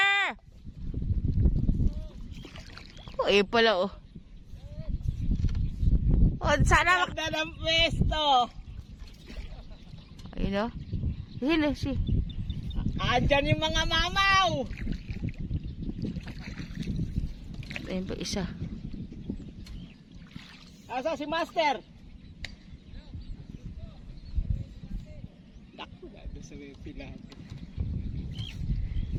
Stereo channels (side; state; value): both; identical; correlation 1.00